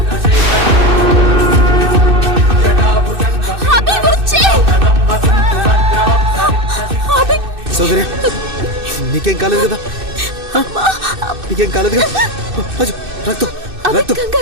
అభి వచ్చేయ్. అభి సౌందర్య, నీకేం కాలేదు కదా? నీకేం కాలేదు కదా? అయ్యో, రక్తం, అభి రక్తం.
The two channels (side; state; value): left; late; 2.6 ms